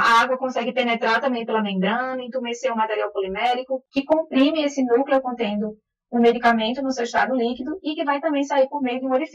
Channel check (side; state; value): both; identical; correlation 1.00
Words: água consegue penetrar também pela membrana, entumecer o material polimérico, que comprime esse núcleo contendo o medicamento no seu estado líquido e que vai também sair por meio de um